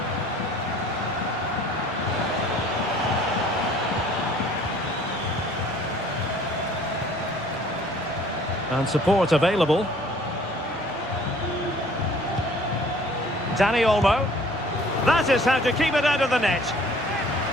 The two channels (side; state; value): both; normal; correlation 0.54